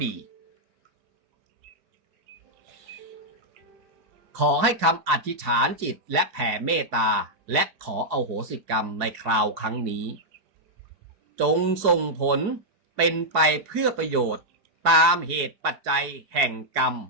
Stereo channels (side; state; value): left; late; 4.7 ms